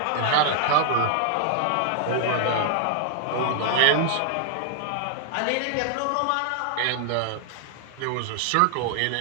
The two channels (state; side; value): different; both; correlation 0.00